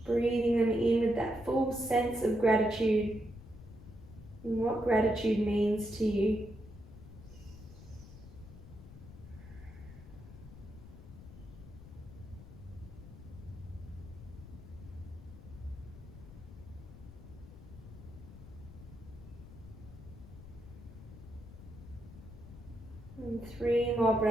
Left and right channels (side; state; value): left; noise; rumble, 15 dB below the sound